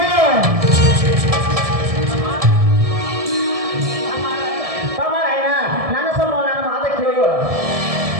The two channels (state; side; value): late; left; 1.7 ms